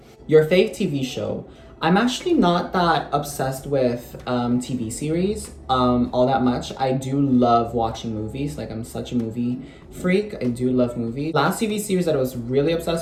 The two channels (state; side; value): identical; both; correlation 1.00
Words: Your fave TV show? I'm actually not that obsessed with TV series all that much. I do love watching movies. Like, I'm such a movie freak. I do love movies. Last TV series that I was really